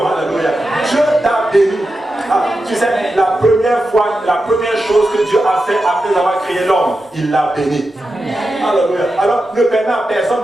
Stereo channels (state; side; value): normal; both; correlation 0.90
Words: Alléluia. Dieu t'a béni. Tu sais, la première chose que Dieu a fait après avoir créé l'homme, il l'a béni. Alléluia. Alors, ne permets à personne